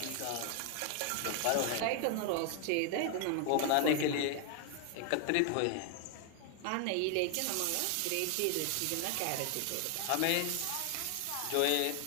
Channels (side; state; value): both; different; correlation 0.00